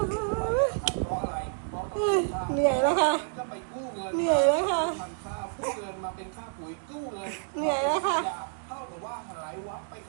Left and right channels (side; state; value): left; silent; digital silence